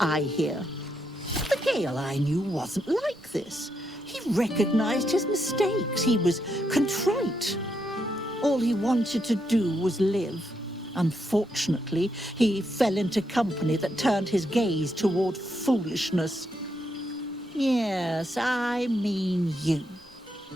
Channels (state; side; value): normal; both; correlation 0.80